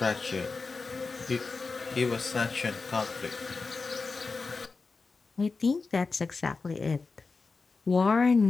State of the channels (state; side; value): quieter; right; 4.2 dB